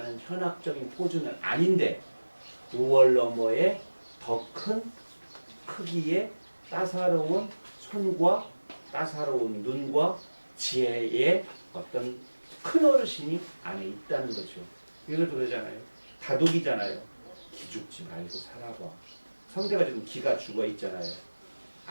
현학적인 포즈는 아닌데 5월 너머에 더 큰 크기의 따사로운 손과 따사로운 눈과 지혜의 어떤 큰 어르신이 안에 있다는 거죠. 이것도 그러잖아요. 다독이잖아요. 기죽지 말고 살아봐. 성대가 지금 기가 죽어 있잖아요.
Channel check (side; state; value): both; inverted; correlation -1.00